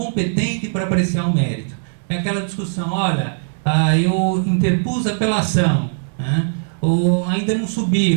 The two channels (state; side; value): silent; left; 61 dB below the other